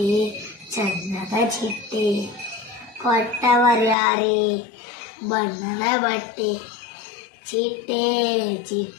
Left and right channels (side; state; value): right; drops out; at 4.0 s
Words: ಚಂದದ ಚಿಟ್ಟೆ, ಕೊಟ್ಟವರ್ಯಾರೇ ಬಣ್ಣದ ಬಟ್ಟೆ. ಚಿಟ್ಟೆ